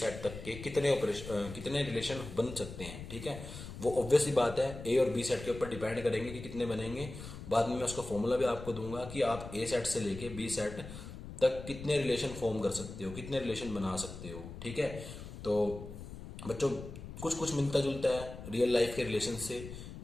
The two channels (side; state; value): left; noise; rumble, 11 dB below the sound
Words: तक के कितने रिलेशन बन सकते हैं, ठीक है। वो ऑब्वियस ही बात है ए और बी सेट के ऊपर डिपेंड करेंगे कि कितने बनेंगे। बाद में मैं उसका फॉर्मूला भी आपको दूंगा कि आप ए सेट से लेके बी सेट तक कितने रिलेशन फॉर्म कर सकते हो, कितने रिलेशन बना सकते हो, ठीक है। तो बच्चों कुछ कुछ मिलता जुलता है रियल लाइफ के रिलेशन से।